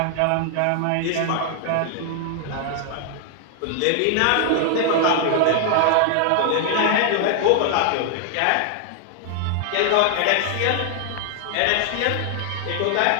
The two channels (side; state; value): both; different; correlation 0.00